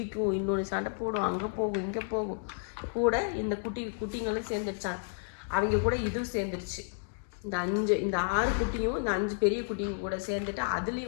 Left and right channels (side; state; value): right; silent; digital silence